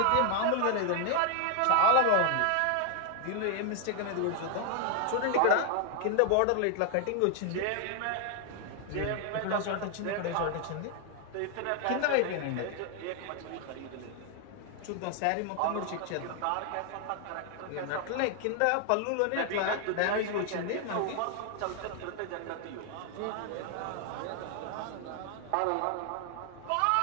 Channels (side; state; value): both; different; correlation 0.00